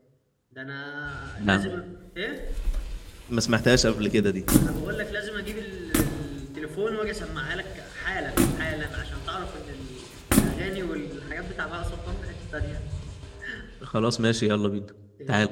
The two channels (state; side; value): identical; both; correlation 1.00